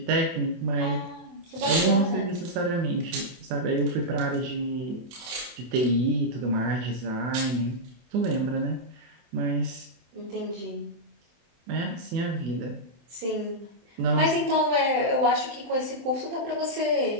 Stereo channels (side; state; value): left; late; 24 ms